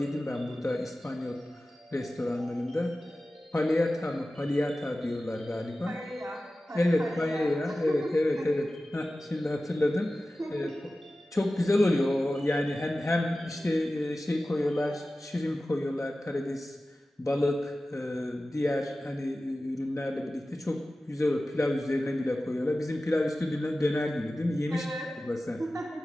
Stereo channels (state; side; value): normal; both; correlation 0.95